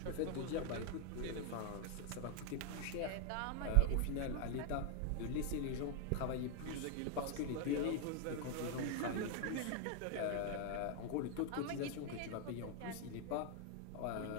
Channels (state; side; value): different; both; correlation 0.00